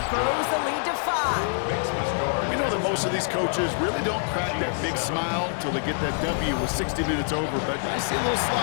throws the lead to 5. We know that most of these coaches really don't crack that big smile until they get that W with 60 minutes over, but I see a little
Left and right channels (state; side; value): silent; right; 61 dB below the other